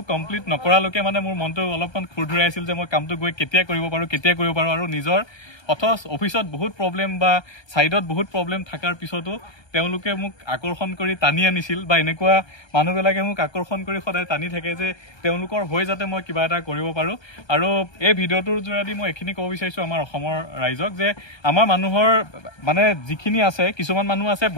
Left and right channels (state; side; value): late; right; 1.3 ms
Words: কমপ্লিট নকৰালৈকে মানে মোৰ মনটো অলপমান খুৰধুৰাই আছিল যে মই কামটো গৈ কেতিয়া কৰিব পাৰোঁ আৰু নিজৰ অথচ অফিচত বহুত প্ৰব্লেম বা ছাইডত বহুত প্ৰব্লেম থকাৰ পিছতো তেওঁলোকে মোক আকৰ্ষণ কৰি টানি আনিছিল বা এনেকুৱা মানুহবিলাকে মোক আকৰ্ষণ কৰি সদায় টানি থাকে যে তেওঁলোকৰ হৈ যাতে মই কিবা এটা কৰিব পাৰোঁ আৰু এই ভিডিঅ'টোৰ যোগেদি মই এইখিনি ক'ব বিচাৰিছোঁ আমাৰ অসমৰ ৰাইজক যে আমাৰ মানুহৰ মানে যিখিনি আছে কিছুমান মানুহ আছে